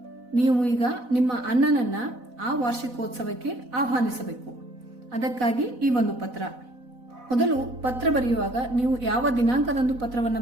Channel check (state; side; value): late; left; 4.0 ms